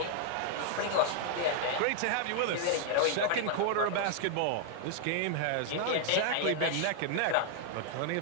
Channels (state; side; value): different; both; correlation 0.00